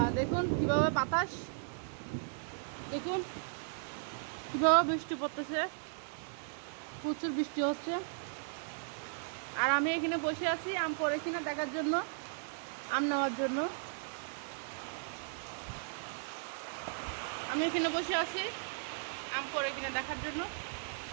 দেখুন কিভাবে বাতাস, দেখুন কিভাবে বৃষ্টি পড়তেছে, প্রচুর বৃষ্টি হচ্ছে। আর আমি এখানে বসে আছি আম পড়ে কিনা দেখার জন্য, আম নেওয়ার জন্য। আমি এখানে বসে আছি আম পড়ে কিনা দেখার জন্য।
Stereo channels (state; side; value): silent; left; digital silence